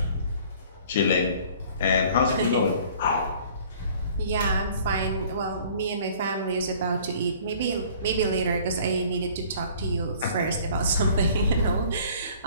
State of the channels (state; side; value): inverted; both; correlation -0.52